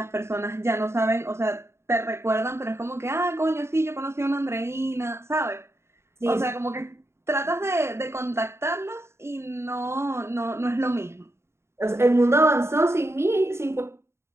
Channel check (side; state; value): left; late; 0.13 ms